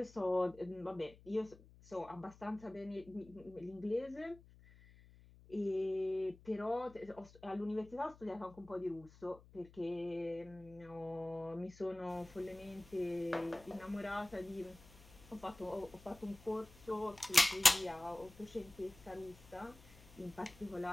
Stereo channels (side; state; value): left; noise; hum, 22 dB below the sound